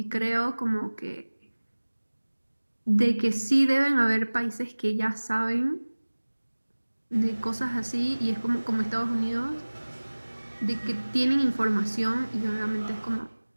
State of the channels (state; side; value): inverted; both; correlation -1.00